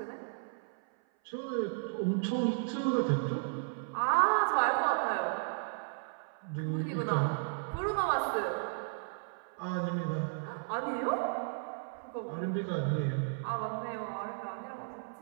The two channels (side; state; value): left; silent; 55 dB below the other